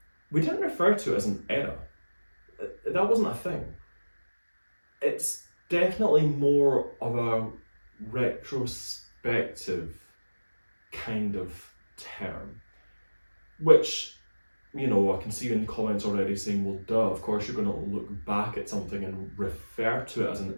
we didn't refer to it as an era. That wasn't a thing. It's definitely more of a retrospective kind of term, which, you know, I can see in the comments already saying, well, duh, of course you're going to look back at something and refer to it as an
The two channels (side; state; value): both; inverted; correlation -1.00